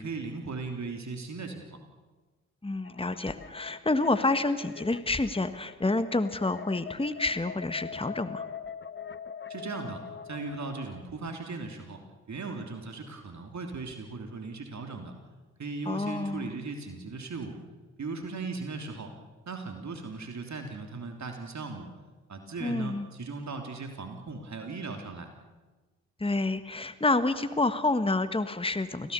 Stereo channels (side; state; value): both; normal; correlation 0.44